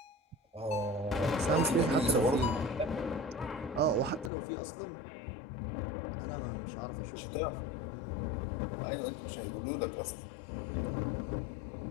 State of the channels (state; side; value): drops out; right; at 4.3 s